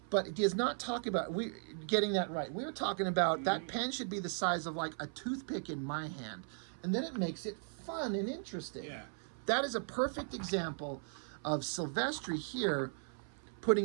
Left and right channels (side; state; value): left; silent; 53 dB below the other